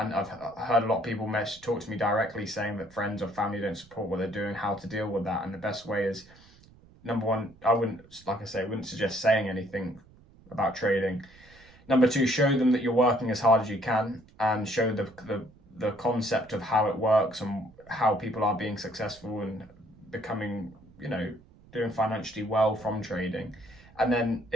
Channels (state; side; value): noise; right; rumble, 25 dB below the sound